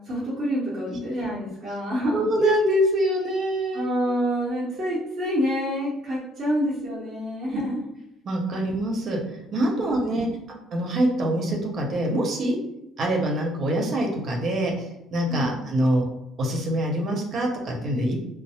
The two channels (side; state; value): both; normal; correlation 0.65